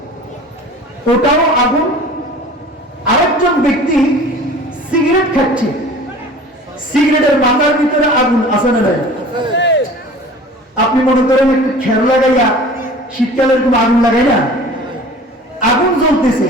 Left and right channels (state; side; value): normal; both; correlation 0.43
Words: ওটাও আগুন। আরেকজন ব্যক্তি সিগারেট খাচ্ছে, সিগারেটের মাথার ভিতরে আগুন আছে না নাই? আপনি মনে করেন একটু খের লাগাইয়া শীতকালের কোনো আগুন লাগাই না, আগুন জ্বলতেছে,